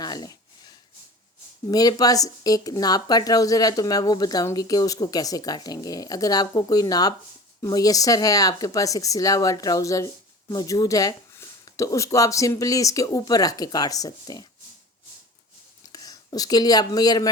لیں۔ میرے پاس ایک ناپ کا ٹراؤزر ہے تو میں وہ بتاؤں گی کہ اس کو کیسے کاٹیں گے۔ اگر آپ کو کوئی ناپ میسر ہے، آپ کے پاس ایک سلا ہوا ٹراؤزر موجود ہے، تو اس کو آپ سمپلی اس کے اوپر رکھ کے کاٹ سکتے ہیں۔ اس کے لیے آپ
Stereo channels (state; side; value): normal; both; correlation 0.38